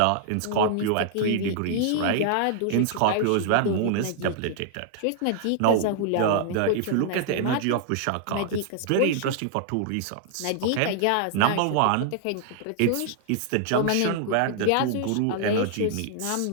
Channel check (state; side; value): different; both; correlation -0.01